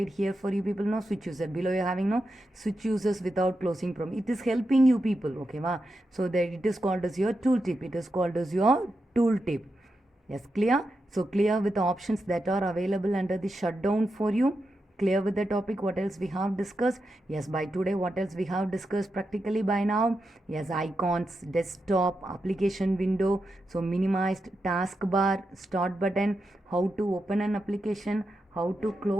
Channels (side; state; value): both; normal; correlation 0.87